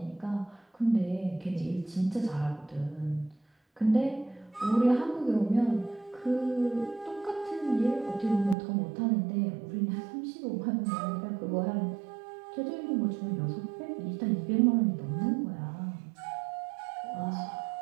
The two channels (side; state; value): left; drops out; at 8.6 s